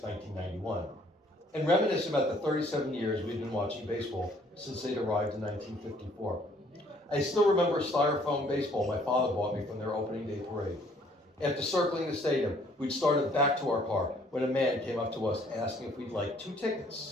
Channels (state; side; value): normal; both; correlation 0.61